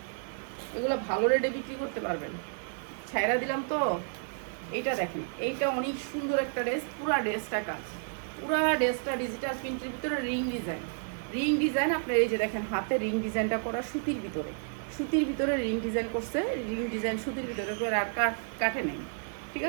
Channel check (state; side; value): silent; left; digital silence